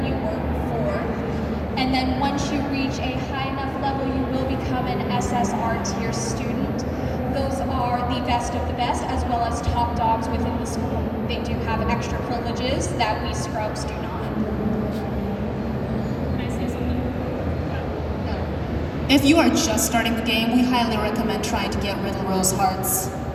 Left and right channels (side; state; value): both; identical; correlation 1.00